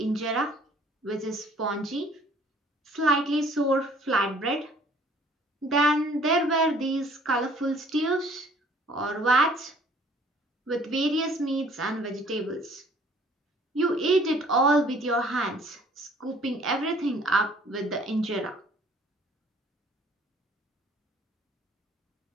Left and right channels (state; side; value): normal; both; correlation 0.56